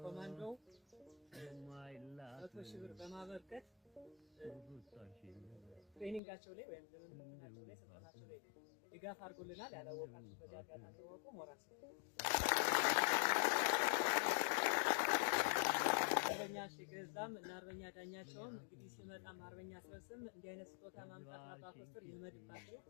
ኮማንዶ 100,000 ብር በማበርከት ትሬኒንጋቸው ላይ ወይም ልምምዳቸው ላይ ስልጠናቸው ላይ ድጋፍ አድርጎልናል። ያላወቃችሁ በዚህ አጋጣሚ ወቁ። ሞራስ አርበኛ ሽገዛም እና አርበኛ ዳኛቸውም እንግዲህ ሲመጣም አርበኛ አስረስም እንዲህ አይነት ስጦታ ማምጣት አባ ኮስተር ይልመድባቸው።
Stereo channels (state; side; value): drops out; right; at 6.2 s